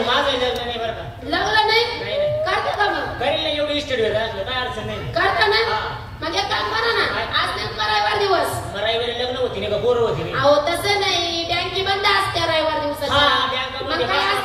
माझं लग्न नाही बरं का लग्न नाही नाही. करता का मग करील ना एवढी इस्टेट भेट असलं काय अडचण नाही करता ना हा. मग एक काम करा ना, आज नेमका रविवार दिवस. रविवारी लग्न होती नाही का पोरं होती नाही? अहो तसं नाही, बँकी बंद असते रविवार दिवसाची. हा, बँक मग मध्ये काय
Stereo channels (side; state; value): both; identical; correlation 1.00